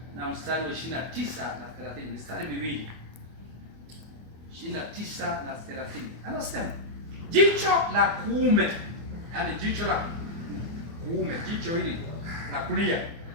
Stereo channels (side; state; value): left; late; 24 ms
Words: na mstari wa 29 na 30. Mstari miwili. 29 na 30. Anasema, jicho la kuume, yani jicho la kuume, jicho hili la kulia,